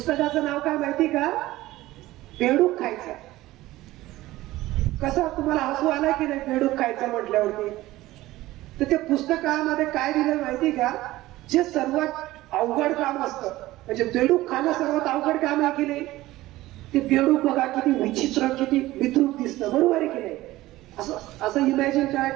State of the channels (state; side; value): quieter; left; 17.1 dB